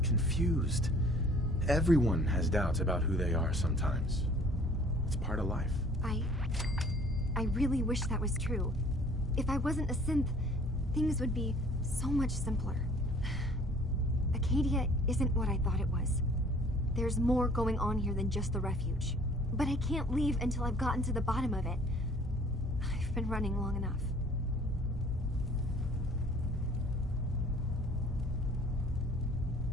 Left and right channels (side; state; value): both; normal; correlation 0.53